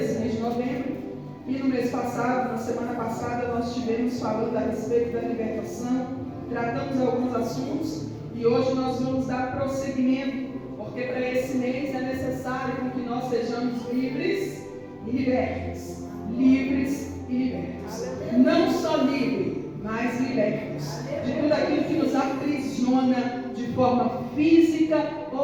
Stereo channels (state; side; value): identical; both; correlation 1.00